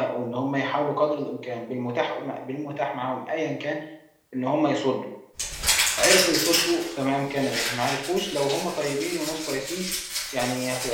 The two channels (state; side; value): identical; both; correlation 1.00